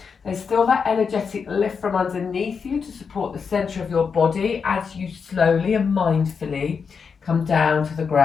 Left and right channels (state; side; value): quieter; right; 5.9 dB